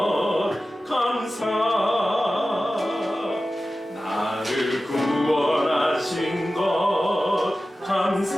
감사, 나를 구원하신 것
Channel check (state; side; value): normal; both; correlation 0.95